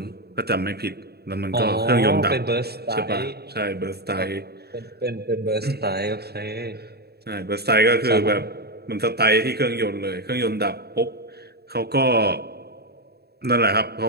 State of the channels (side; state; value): left; late; 0.47 ms